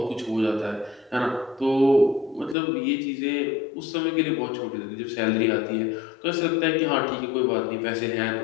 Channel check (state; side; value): drops out; right; at 2.6 s